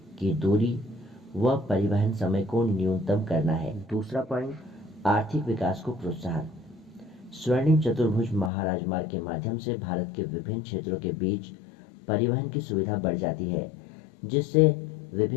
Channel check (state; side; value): drops out; right; at 8.5 s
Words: की दूरी व परिवहन समय को न्यूनतम करना है। दूसरा पॉइंट, आर्थिक विकास को प्रोत्साहन। स्वर्णिम चतुर्भुज महाराजमार्ग के माध्यम से भारत के विभिन्न क्षेत्रों के बीच परिवहन की सुविधा बढ़ जाती है, जिससे